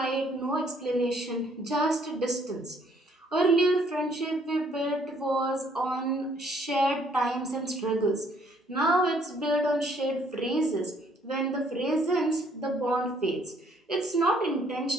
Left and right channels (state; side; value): normal; both; correlation 0.64